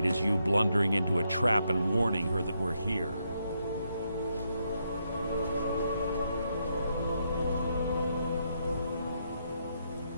is you blundering into a trap and warning her that we're here.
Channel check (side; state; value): both; inverted; correlation -0.79